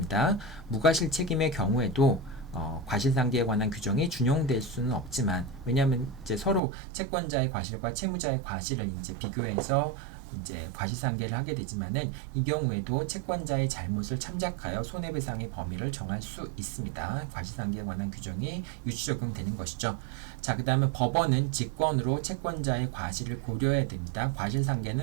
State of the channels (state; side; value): drops out; left; at 6.6 s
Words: 무과실 책임의 경우에도 과실상계에 관한 규정이 준용될 수는 없지만, 왜냐하면 이제 서로 채권자의 과실과 채무자의 과실을 이제 비교해서 이제 과실상계를 하게 되지만은, 이 경우에도 채권자의 잘못을 참작하여 손해배상의 범위를 정할 수 있습니다. 과실상계에 관한 규정이 유추 적용되는 것이죠. 자, 그 다음에 법원은 직권으로 채권자의 과실을 고려해야 됩니다.